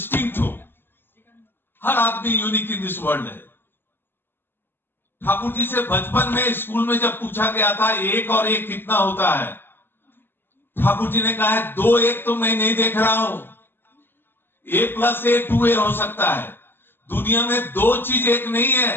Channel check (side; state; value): right; late; 0.099 ms